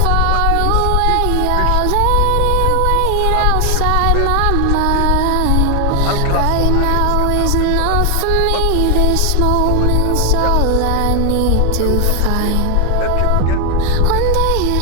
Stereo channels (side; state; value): both; different; correlation 0.00